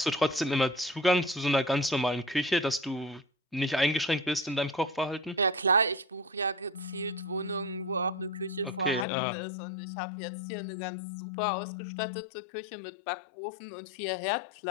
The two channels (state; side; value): drops out; right; at 9.1 s